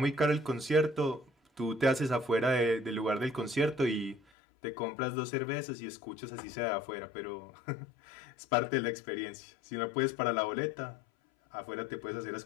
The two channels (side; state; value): right; drops out; at 4.2 s